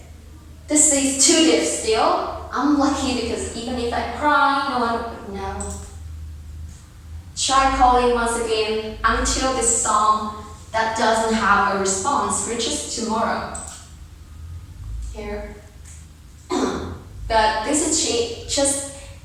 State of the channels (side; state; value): both; identical; correlation 1.00